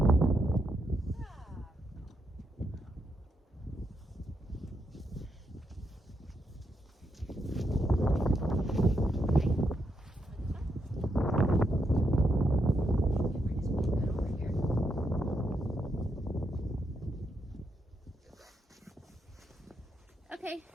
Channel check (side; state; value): both; normal; correlation 0.81